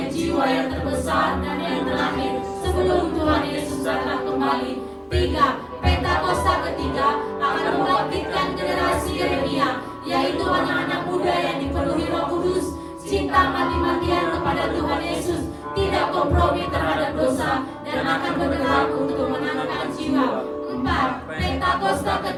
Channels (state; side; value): identical; both; correlation 1.00